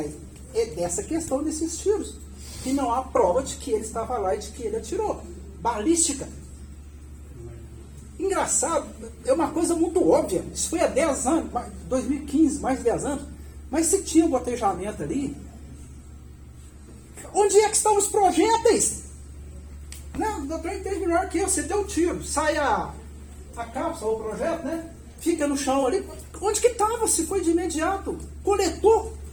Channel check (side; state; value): both; identical; correlation 1.00